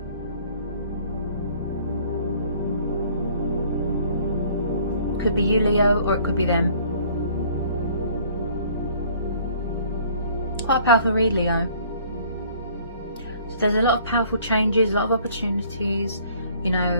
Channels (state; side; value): inverted; both; correlation -0.56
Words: Could be you, Leo, or it could be them. Quite a powerful read, Leo. So there's a lot of powerful changes, a lot of opportunities, you